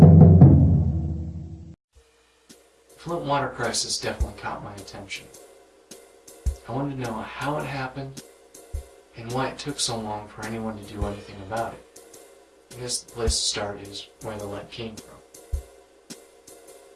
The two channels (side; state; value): both; identical; correlation 1.00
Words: Flint water crisis definitely caught my attention. I wanted to know how it happened and why it took so long for anyone to do anything about it. I guess the place to start is where the lead came from.